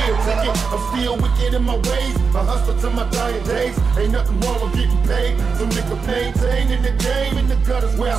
ticket. I'm still wicked in my ways, I hustle to my dying days. Ain't nothing wrong with getting paid. Some nigga maintaining the game in the gutters where I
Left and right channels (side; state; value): left; quieter; 5.2 dB